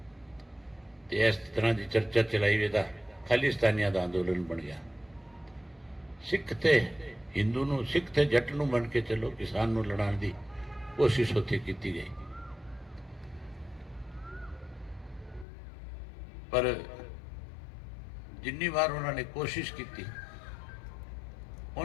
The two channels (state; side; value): drops out; right; at 15.5 s